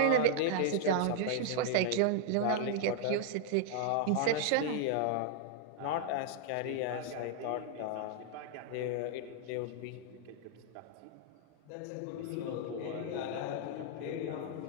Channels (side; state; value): both; different; correlation 0.00